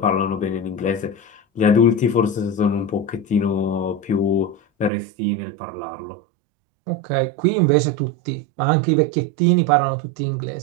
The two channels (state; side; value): drops out; left; at 4.9 s